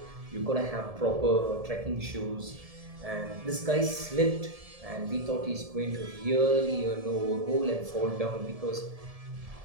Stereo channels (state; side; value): late; left; 1.7 ms